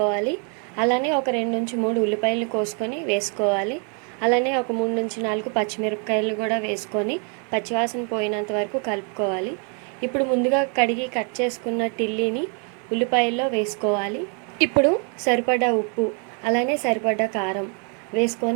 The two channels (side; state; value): left; quieter; 39.6 dB